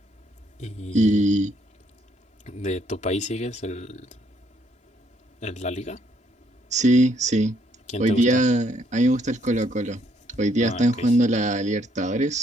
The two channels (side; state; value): both; normal; correlation 0.69